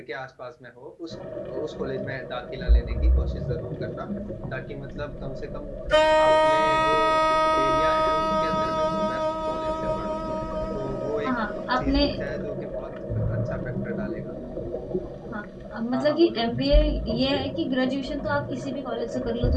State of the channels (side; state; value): both; identical; correlation 1.00